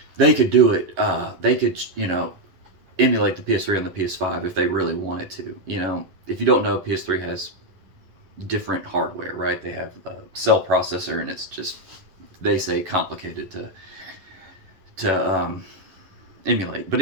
could do it. They could, you know, emulate the PS3 on the PS5 if they really wanted to. You know, if you don't know, PS3 has different hardware, right? They have a cell processor, and it's just, they say, complicated to emulate. But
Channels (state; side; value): late; left; 11 ms